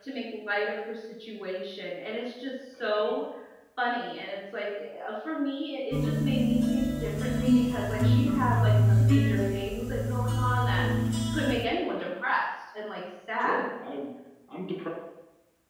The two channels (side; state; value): both; identical; correlation 1.00